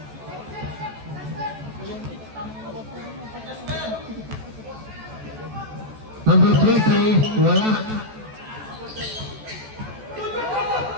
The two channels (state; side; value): late; left; 14 ms